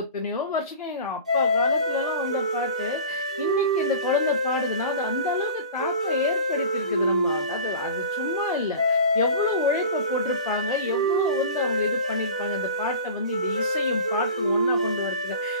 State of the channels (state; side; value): inverted; both; correlation -0.37